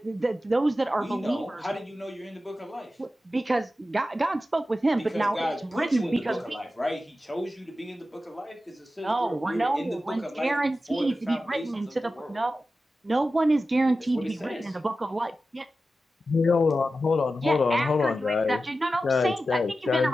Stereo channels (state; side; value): normal; both; correlation 0.93